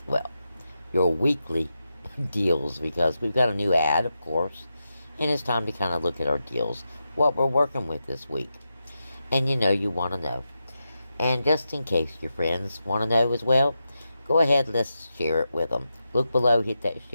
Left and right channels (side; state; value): both; inverted; correlation -0.89